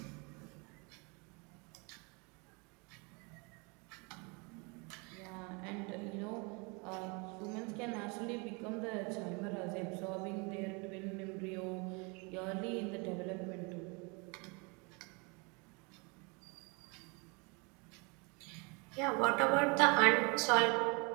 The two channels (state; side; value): quieter; left; 30.8 dB